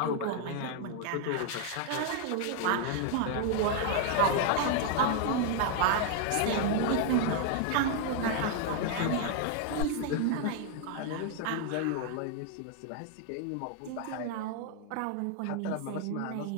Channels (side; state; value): both; different; correlation 0.00